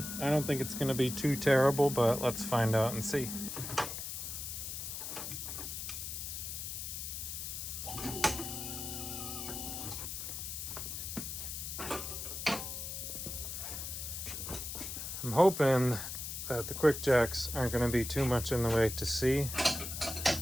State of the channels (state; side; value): noise; left; hiss, 6 dB below the sound